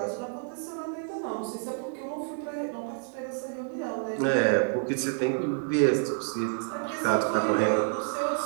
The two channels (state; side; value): silent; left; digital silence